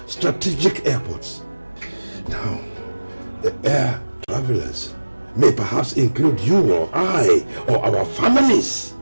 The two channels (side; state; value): both; inverted; correlation -1.00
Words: strategic airports. Now, the air travelers may perhaps include you or I or our families.